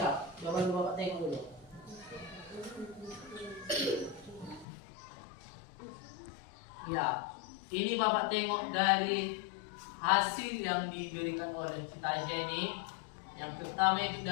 Coba dulu Bapak tengok dulu. Ya, ini Bapak tengok dari hasil yang diberikan oleh Citaja ini. Yang pertama itu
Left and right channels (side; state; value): right; drops out; at 4.7 s